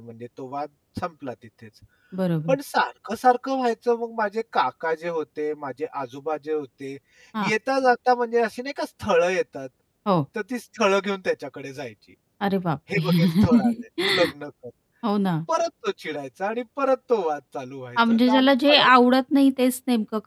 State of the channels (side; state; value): both; identical; correlation 1.00